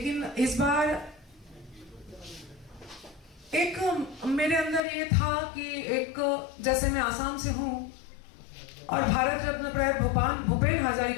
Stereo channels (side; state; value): right; drops out; at 4.8 s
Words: इस बार एक मेरे अंदर ये था कि एक जैसे मैं आसाम से हूँ और भारत रत्न प्रयात भूपेन